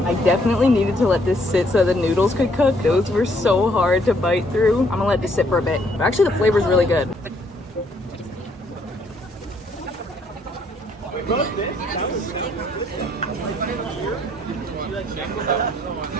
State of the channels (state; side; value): normal; both; correlation 0.67